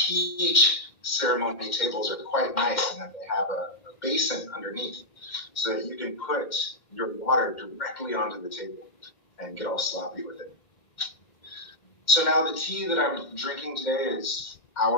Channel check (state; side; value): late; right; 2.1 ms